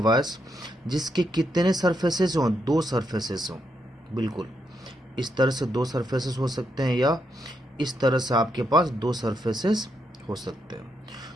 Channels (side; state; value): both; normal; correlation 0.80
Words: जिसके कितने सरफेसेस हों? दो सरफेसेस हों। बिल्कुल इस तरह से दो सरफेसेस हो सकते हैं, या इस तरह से आपके पास दो सरफेसेस हो सकते